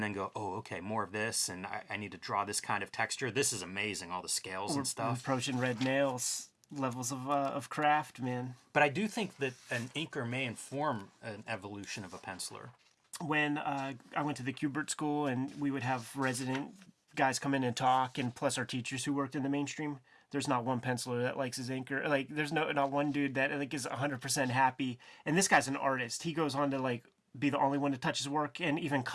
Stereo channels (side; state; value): both; identical; correlation 1.00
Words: then go, oh, okay, more of this, and I need to draw this kind of texture? This is amazing, all the scales and stuff. Approaching red nails levels of craft, man. But I do think that an inker may inform an evolution of a penciler. When I went to the Kubert School, and we would have resident guys come in and talk, and plus our teachers who worked in the mainstream, there's not one penciler that likes his inker. Like, there's not one dude that like is 100% happy. And this guy's an artist. He goes on to like be the only one to touch his work and even